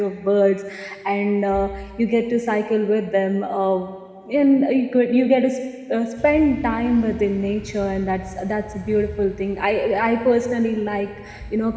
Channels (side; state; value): both; identical; correlation 1.00